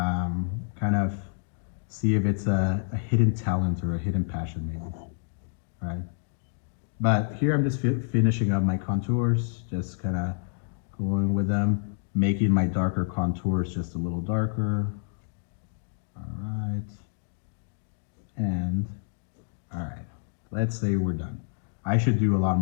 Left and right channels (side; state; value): right; silent; digital silence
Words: of see if it's a hidden talent or a hidden passion maybe. All right. But here I'm just finishing up my contours, just kind of going with them, making my darker contours just a little darker. All right. And all right, let's say we're done. I should do a lot